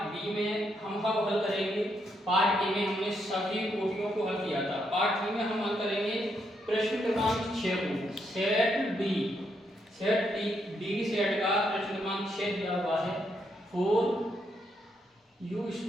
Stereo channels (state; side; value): normal; both; correlation 0.78